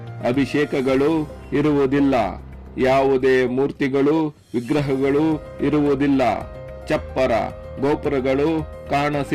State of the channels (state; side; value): identical; both; correlation 1.00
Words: ಅಭಿಷೇಕಗಳು ಇರುವುದಿಲ್ಲ, ಯಾವುದೇ ಮೂರ್ತಿಗಳು ವಿಗ್ರಹಗಳು ಇರುವುದಿಲ್ಲ, ಚಪ್ಪರ ಗೋಪುರಗಳು